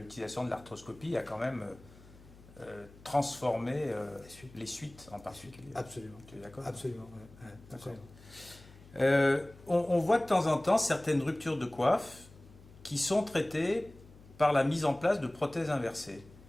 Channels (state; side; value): noise; left; hum, 22 dB below the sound